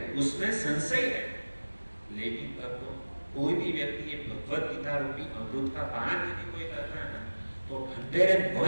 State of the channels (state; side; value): inverted; both; correlation -1.00